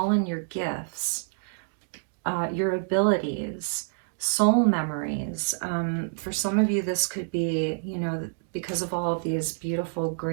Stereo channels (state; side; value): silent; left; digital silence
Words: in your gifts, your abilities, soul memories. For some of you, this could be, you know, because of all of these beautiful